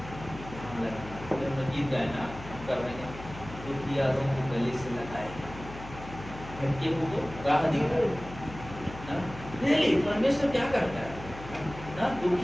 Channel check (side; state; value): left; noise; hum, 13 dB below the sound